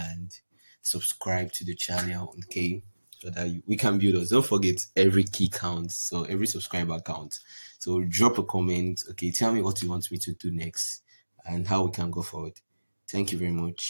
subscribe to the channel, okay? So that we can build us. Don't forget every key counts, so every subscriber counts. So drop a comment, okay? Tell me what you want me to do next and how we can go forward. Thank you very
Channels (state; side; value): inverted; both; correlation -1.00